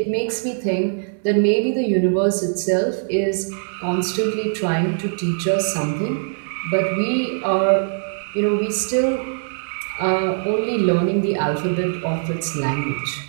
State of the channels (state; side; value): silent; left; digital silence